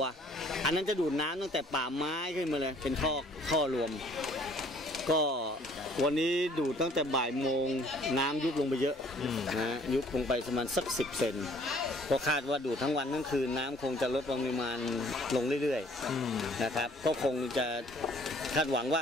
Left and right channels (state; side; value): normal; both; correlation 0.58